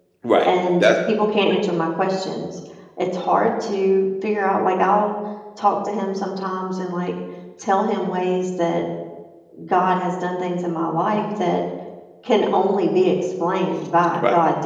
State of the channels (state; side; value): identical; both; correlation 1.00